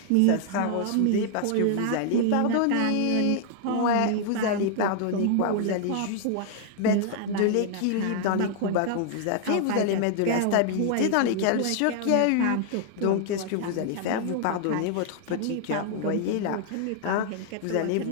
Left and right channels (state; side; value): different; both; correlation 0.00